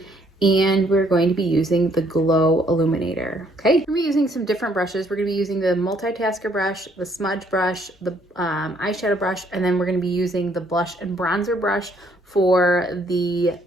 and we're going to be using the Glow Illuminator. Okay, we're going to be using some different brushes. We're going to be using the multitasker brush, the smudge brush, the eyeshadow brush, and then we're going to be using the blush and bronzer brush for the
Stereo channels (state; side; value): normal; both; correlation 0.67